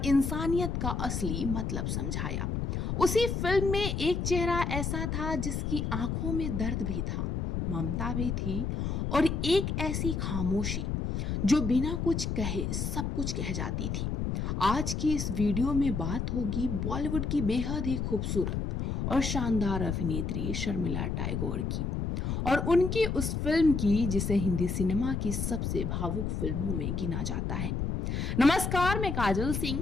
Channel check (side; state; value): left; noise; rumble, 1 dB below the sound